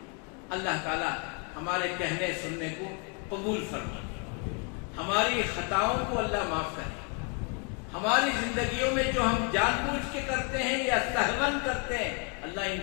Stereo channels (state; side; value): quieter; right; 36.3 dB